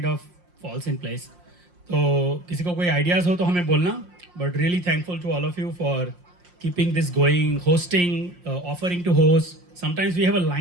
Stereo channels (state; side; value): late; left; 5.6 ms